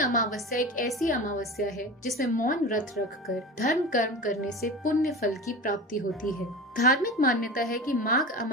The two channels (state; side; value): normal; both; correlation 0.31